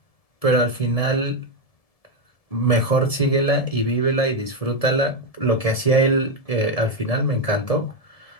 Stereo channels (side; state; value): right; late; 1.7 ms